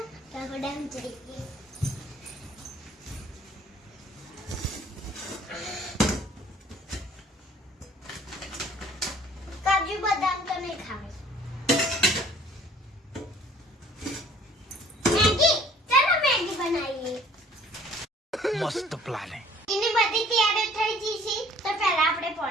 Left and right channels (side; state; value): both; normal; correlation 0.55